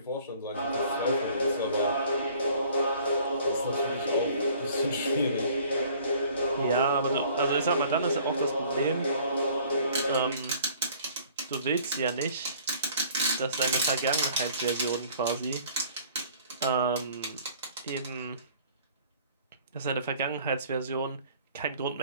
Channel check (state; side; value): inverted; both; correlation -0.53